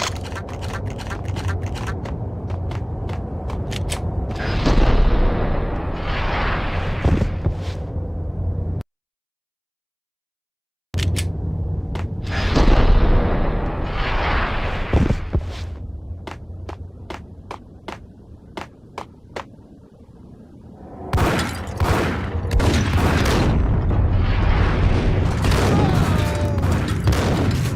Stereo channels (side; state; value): both; identical; correlation 1.00